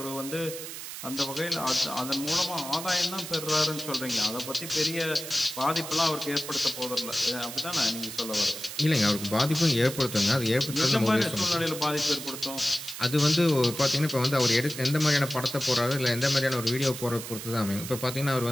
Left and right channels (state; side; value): noise; right; hiss, 9 dB below the sound